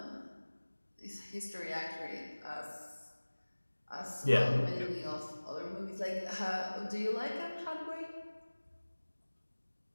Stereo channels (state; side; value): inverted; both; correlation -1.00